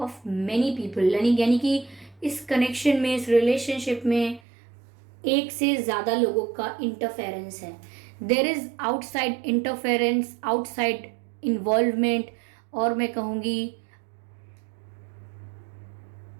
many people, यानी कि इस कनेक्शन में, इस रिलेशनशिप में एक से ज़्यादा लोगों का इंटरफेरेंस है। There is outside interference, outside involvement, और मैं कहूँगी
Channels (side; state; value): left; drops out; at 4.4 s